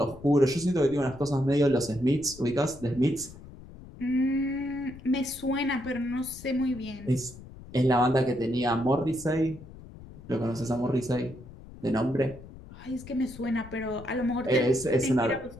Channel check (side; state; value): left; noise; rumble, 17 dB below the sound